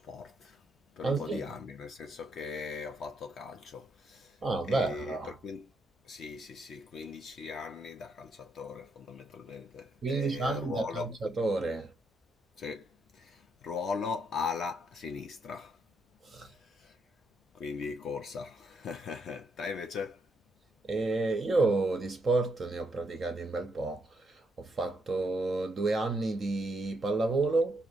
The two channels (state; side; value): normal; both; correlation 0.76